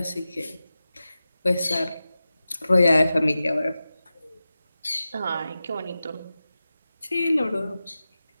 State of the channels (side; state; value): both; inverted; correlation -0.94